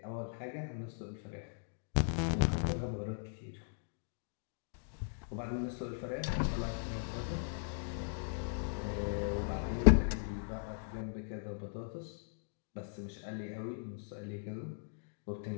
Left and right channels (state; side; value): silent; right; digital silence